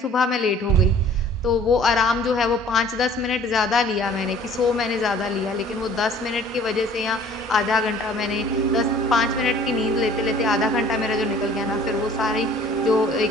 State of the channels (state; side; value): normal; both; correlation 0.52